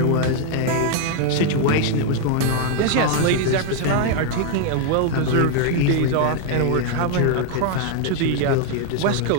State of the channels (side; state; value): both; different; correlation 0.00